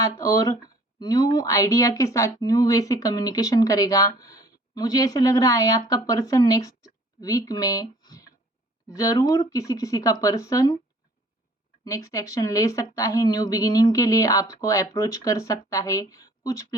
और न्यू आइडिया के साथ न्यू वे से कम्युनिकेशन करेगा। मुझे ऐसे लग रहा है आपका पर्सन नेक्स्ट वीक में ज़रूर किसी किसी का पर्सन नेक्स्ट एक्शन ले सकता है, न्यू बिगिनिंग के लिए आपको अप्रोच कर सकता है, कुछ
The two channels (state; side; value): normal; both; correlation 0.54